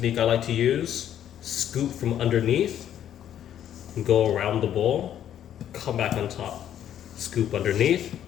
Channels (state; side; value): quieter; right; 10.5 dB